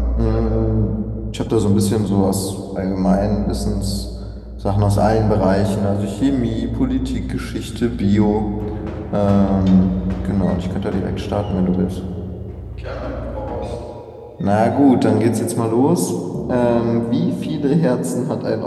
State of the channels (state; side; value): identical; both; correlation 1.00